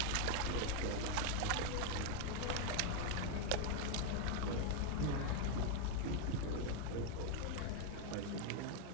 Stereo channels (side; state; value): both; different; correlation 0.01